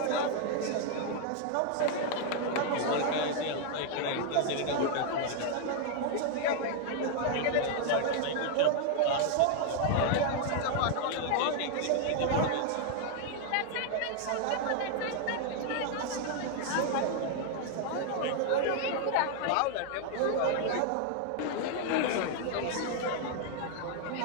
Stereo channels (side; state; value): both; different; correlation 0.00